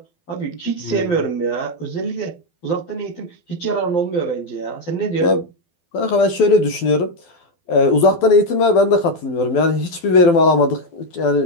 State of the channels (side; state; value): right; late; 12 ms